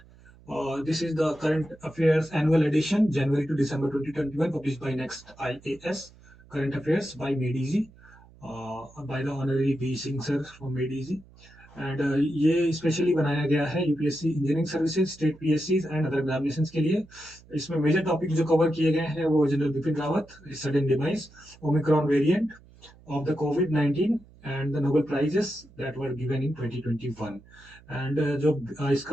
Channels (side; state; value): right; noise; hum, 25 dB below the sound